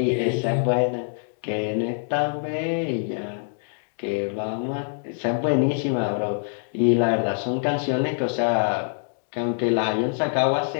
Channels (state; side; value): silent; right; digital silence